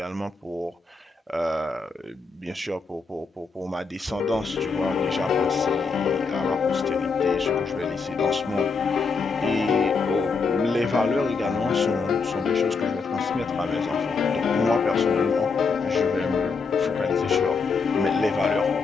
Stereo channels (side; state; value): right; quieter; 4.7 dB